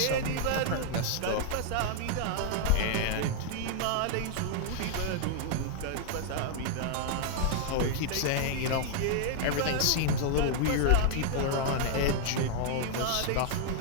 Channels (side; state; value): both; different; correlation 0.00